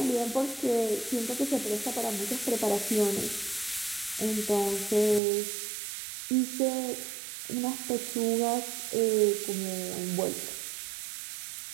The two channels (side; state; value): left; drops out; at 5.2 s